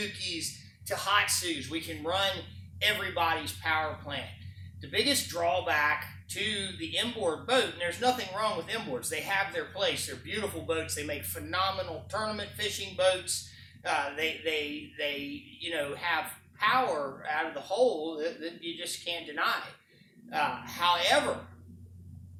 Tohatsus. We can run everybody's power plant. The biggest drawback to the inboard boat, and there's nothing wrong with inboards, they have their place. They're beautiful boats. They make phenomenal tournament fishing boats. They have power out of the hole that you just can't deny. However,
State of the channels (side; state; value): both; identical; correlation 1.00